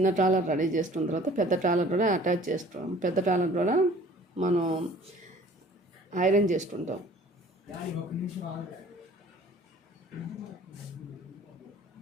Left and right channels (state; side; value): normal; both; correlation 0.50